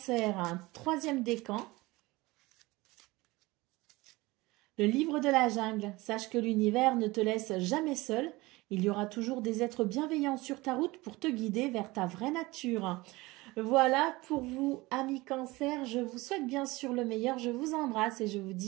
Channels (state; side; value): quieter; left; 21.4 dB